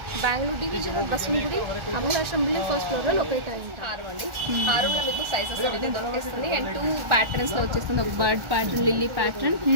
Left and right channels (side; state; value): left; late; 1.4 ms